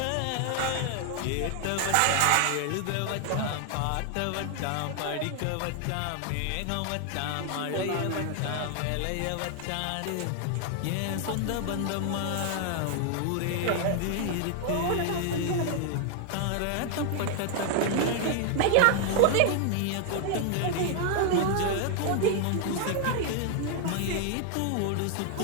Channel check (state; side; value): different; both; correlation 0.00